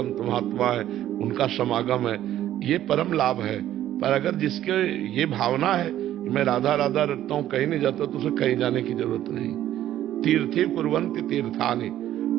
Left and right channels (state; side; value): quieter; left; 12.5 dB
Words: महात्मा है, उनका समागम है। ये परम लाभ है। पर अगर जिसके ये भावना है कि कि मैं राधा राधा रटता हूं, कहीं नहीं जाता, तो उसे कहीं जाने की जरूरत नहीं। तीर्थी कुर्वन्ति तीर्थानि,